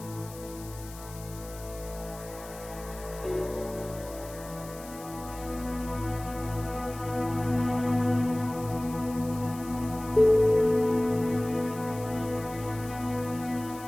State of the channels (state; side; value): noise; left; hiss, 17 dB below the sound